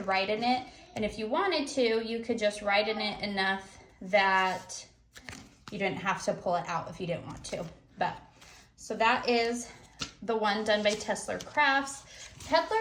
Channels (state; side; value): identical; both; correlation 1.00